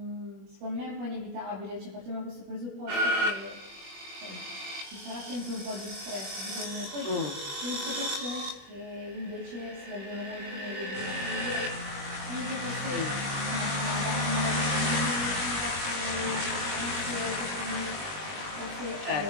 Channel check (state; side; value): late; left; 21 ms